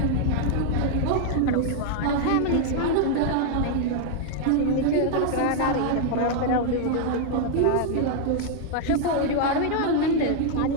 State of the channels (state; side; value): different; both; correlation 0.00